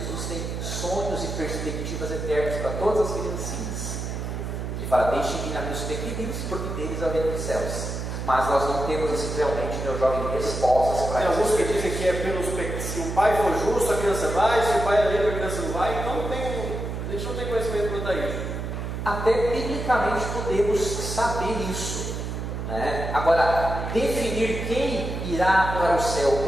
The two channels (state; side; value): noise; right; hum, 4 dB below the sound